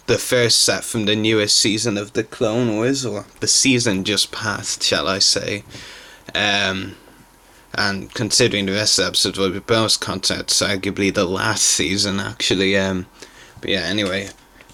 first set from the newest season of the Clone Wars, or the season just passed, shall I say. And considering the rest of the episodes will be bonus content, it's arguably the last season actually. But yeah, anyway,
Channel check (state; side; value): identical; both; correlation 1.00